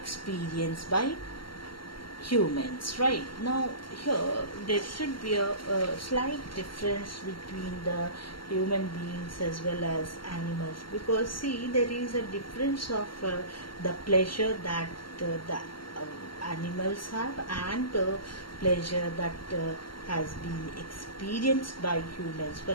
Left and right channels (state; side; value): late; right; 0.73 ms